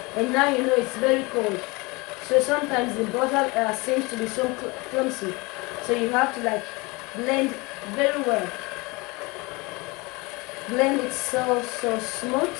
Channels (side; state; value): right; quieter; 25.6 dB